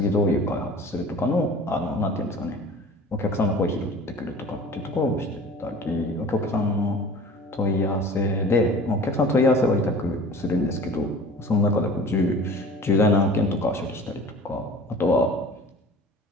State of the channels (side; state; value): both; normal; correlation 0.43